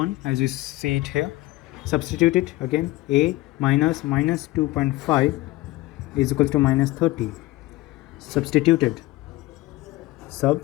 as you see it here. Substitute it again. A minus 2.5 is equals to minus 30. Substituted.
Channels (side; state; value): right; quieter; 18.6 dB